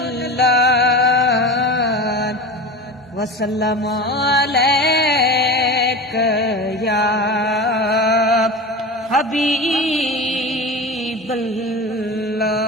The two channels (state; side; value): normal; both; correlation 0.30